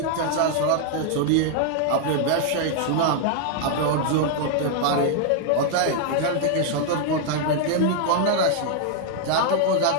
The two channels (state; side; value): different; both; correlation -0.01